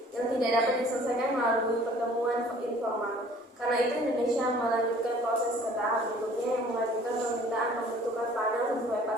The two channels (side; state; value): both; normal; correlation 0.53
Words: yang tidak dapat diselesaikan melalui pertemuan informal. Karena itu Indonesia melanjutkan proses ke tahap berikutnya yang mengajukan permintaan pembentukan panel sesuai